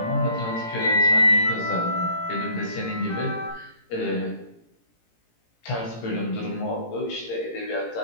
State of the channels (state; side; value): late; right; 18 ms